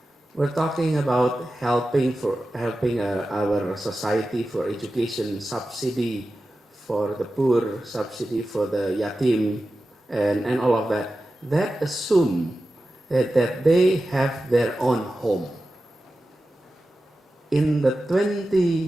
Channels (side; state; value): both; normal; correlation 0.93